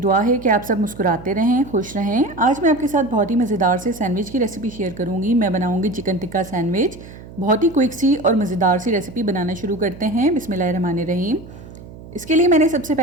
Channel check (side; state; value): right; noise; hum, 17 dB below the sound